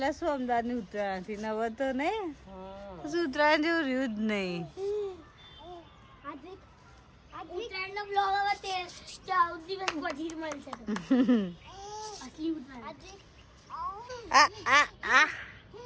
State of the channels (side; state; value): both; identical; correlation 1.00